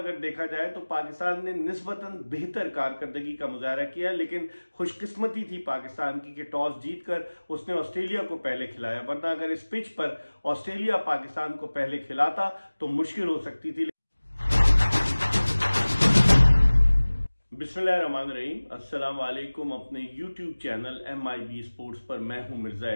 देखा जाए तो पाकिस्तान ने निस्बतन बेहतर कारकर्दगी का मुजाहरा किया, लेकिन खुशकिस्मती थी पाकिस्तान की कि टॉस जीतकर उसने ऑस्ट्रेलिया को पहले खिलाया, वरना अगर इस पिच पर ऑस्ट्रेलिया पाकिस्तान को पहले खिलाता तो मुश्किल हो सकती थी। बिस्मिल्लाहिर्रहमानिर्रहीम, अस्सलाम वालेकुम। अपने यूट्यूब चैनल MIB स्पोर्ट्स पर मैं हूं मिर्जा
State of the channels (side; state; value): both; inverted; correlation -1.00